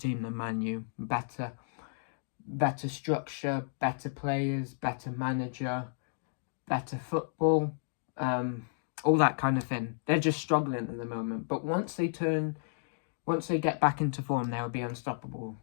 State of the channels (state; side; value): silent; right; digital silence